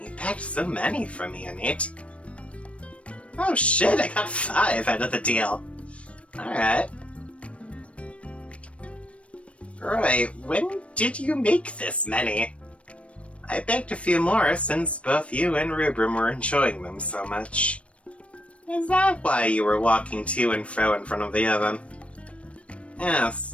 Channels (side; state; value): right; late; 0.062 ms